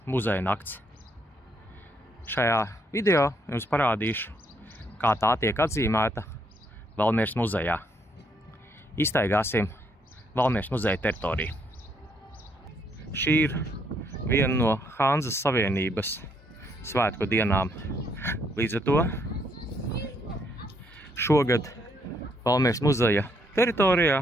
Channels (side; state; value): both; normal; correlation 0.72